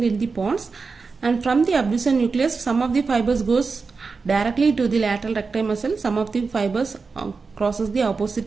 in the pons. And from the abducens nucleus, some of the fibers goes directly to the lateral recti muscle. Some of the fibers crosses the opposite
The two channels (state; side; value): quieter; left; 4.6 dB